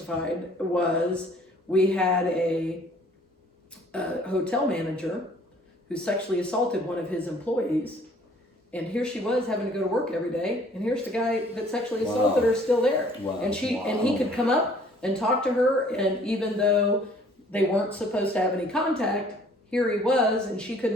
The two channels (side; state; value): both; normal; correlation 0.56